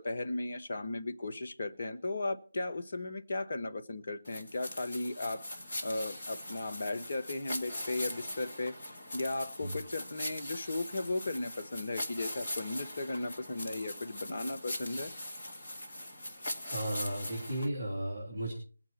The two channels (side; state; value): both; inverted; correlation -0.92